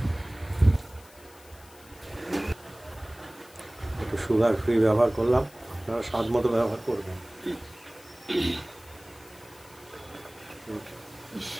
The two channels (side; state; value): left; noise; hiss, 24 dB below the sound